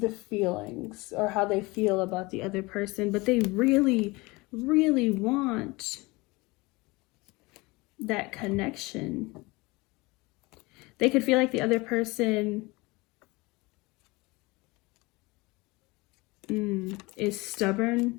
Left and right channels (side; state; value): right; quieter; 23.7 dB